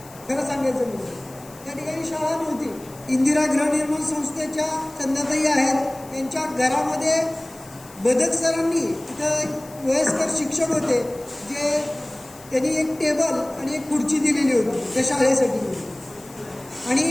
खरं सांगायचं म्हणजे त्या ठिकाणी शाळा नव्हती. इंदिरा गृहनिर्माण संस्थेच्या चंदाताई आहेत, त्यांच्या घरामध्ये बदक सरांनी तिथं वयस्कर शिक्षक होते, जे त्यांनी एक टेबल आणि एक खुर्ची दिलेली होती त्या शाळेसाठी. आणि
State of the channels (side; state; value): left; noise; hiss, 21 dB below the sound